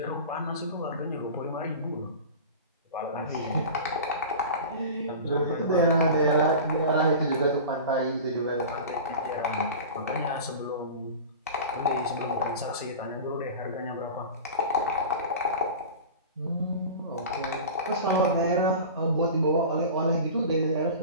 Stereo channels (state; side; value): inverted; both; correlation -0.33